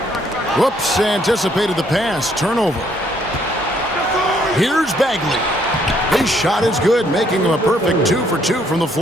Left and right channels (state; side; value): normal; both; correlation 0.68